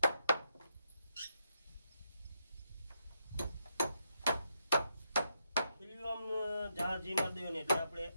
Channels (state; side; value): inverted; both; correlation -0.81